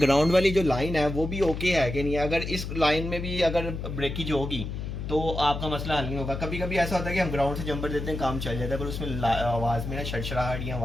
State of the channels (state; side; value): noise; left; hum, 5 dB below the sound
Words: वाली जो लाइन है वो भी ओके है कि नहीं। अगर इस लाइन में भी अगर ब्रेकेज होगी तो आपका मसला हल नहीं होगा। कभी कभी ऐसा होता है कि हम ग्राउंड से जंपर देते हैं, काम चल जाता है, पर उसमें आवाज़ में ना शड़शड़ाहट या